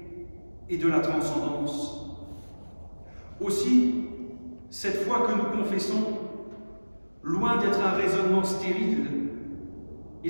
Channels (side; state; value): both; inverted; correlation -1.00